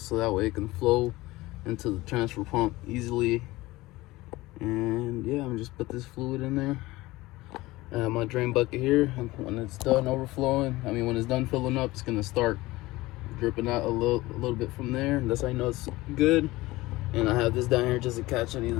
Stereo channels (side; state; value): right; quieter; 19.4 dB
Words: so that way it can flow into the transfer pump easily. And yeah, I'm just put this fluid in there. I have my drain bucket here, and when it's done overflowing, when it's done filling up, it's gonna start dripping out a little bit from there. That's how I know it's good. And I have this down here just to catch any of